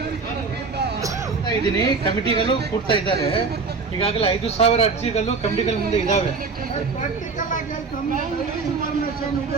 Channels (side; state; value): left; quieter; 4.5 dB